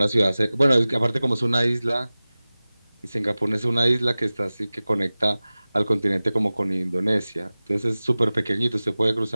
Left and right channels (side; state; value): both; inverted; correlation -0.97